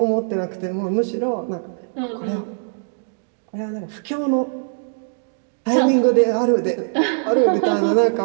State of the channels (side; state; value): left; silent; digital silence